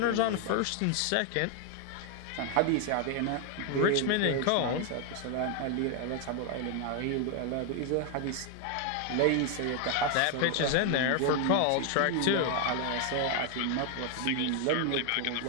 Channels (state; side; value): different; both; correlation 0.01